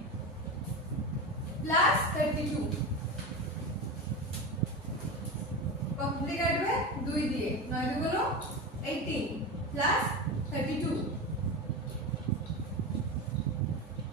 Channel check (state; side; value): normal; both; correlation 0.22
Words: plus 32 কত কাটবে 2 দিয়ে 9 গুলো 18 plus 32